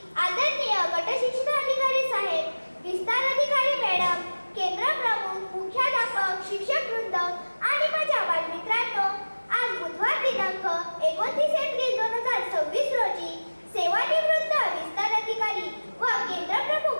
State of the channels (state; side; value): inverted; both; correlation -1.00